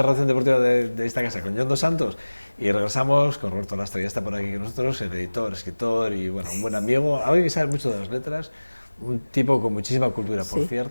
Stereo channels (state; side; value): inverted; both; correlation -1.00